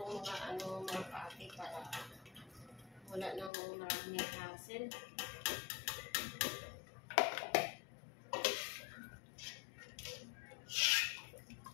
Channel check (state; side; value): drops out; right; at 3.5 s